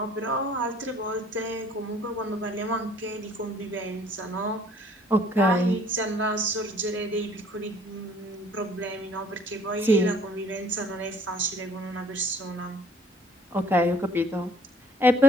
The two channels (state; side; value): normal; both; correlation 0.57